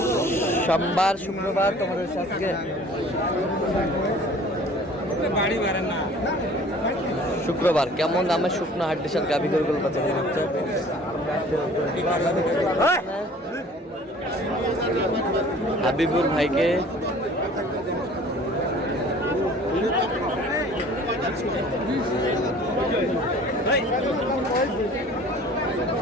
সোমবার শুক্রবার। তোমাদের আজকে শুক্রবার। কেমন দামে শুকনো হাড্ডির সাথে গাভী গরুগুলো বাচ্চা হচ্ছে হাবিবুর ভাইকে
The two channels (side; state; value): both; normal; correlation 0.49